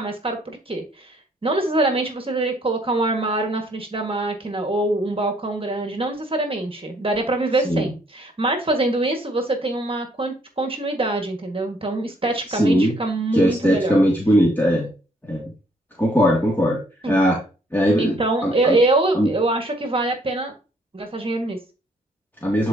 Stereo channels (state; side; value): normal; both; correlation 0.66